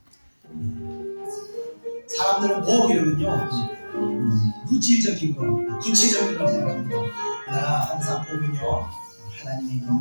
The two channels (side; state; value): both; inverted; correlation -1.00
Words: 사람들은 복 이러면요 물질적인 거, 구체적인 걸 생각합니다. 그러나 항상 복은요 하나님의